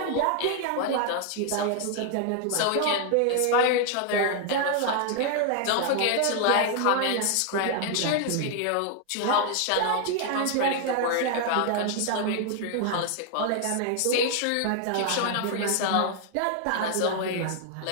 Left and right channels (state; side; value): different; both; correlation 0.00